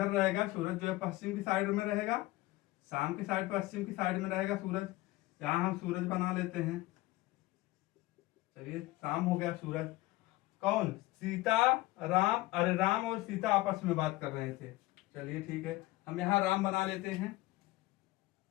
रहेगा, सूरज जो है पश्चिम की साइड में रहेगा, शाम की साइड पश्चिम की साइड में रहेगा सूरज, यहाँ हम सूरज बना लेते हैं। चलिए, शाम हो गया, सूरज। कौन, सीता, राम, अरे राम और सीता आपस में बात कर रहे थे। चलिए ठीक है, हम यहाँ राम बना लेते हैं,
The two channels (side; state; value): right; quieter; 18.8 dB